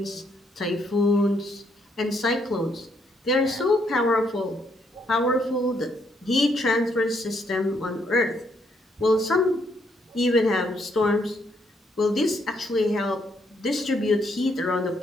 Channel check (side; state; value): both; normal; correlation 0.73